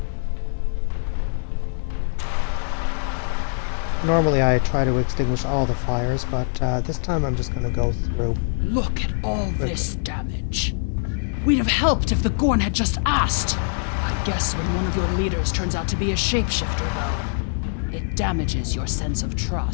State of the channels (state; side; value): silent; right; digital silence